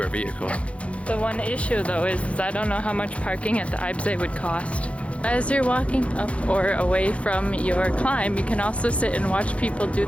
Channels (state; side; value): late; right; 0.062 ms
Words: our vehicle. The one issue though is I don't know how much parking at the Eibsee would cost. As you're walking up or away from your climb, you can also sit and watch people do